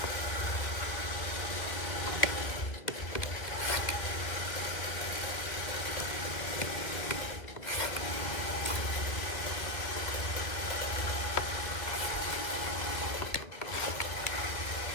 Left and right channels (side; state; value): right; late; 1.8 ms